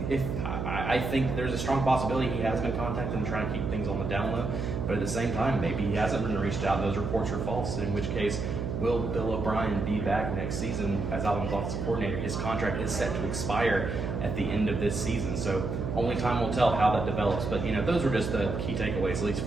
if I think there's a strong possibility he has been contacted and trying to keep things on the down low. But at the same time, maybe he hasn't been reached out and those reports are false, in which case, will Bill O'Brien be back next season as Alabama's offensive coordinator? His contract is set to expire at the end of this season, so only time will tell how that develops. But those were just the key takeaways, at least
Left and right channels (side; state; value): right; noise; hum, 3 dB below the sound